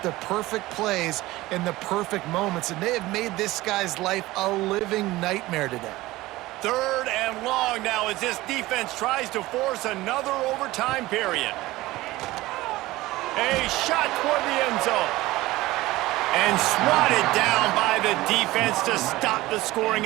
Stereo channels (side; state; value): left; quieter; 18.4 dB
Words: the perfect plays in the perfect moments, and they have made this guy's life a living nightmare today. Third and long now as this defense tries to force another overtime period. A shot toward the end zone. And swatted down by the defense to stop the